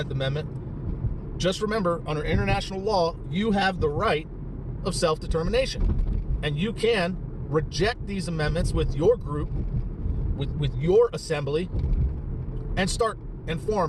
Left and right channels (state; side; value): identical; both; correlation 1.00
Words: Amendment, just remember, under international law, you have the right of self-determination. And you can reject these amendments with your group, with your assembly, and start and